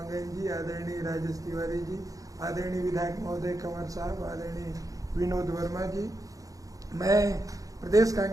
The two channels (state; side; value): late; left; 0.17 ms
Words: जी, आदरणीय राजेश तिवारी जी, आदरणीय विधायक महोदय कंवर साहब, आदरणीय विनोद वर्मा जी, मैं प्रदेश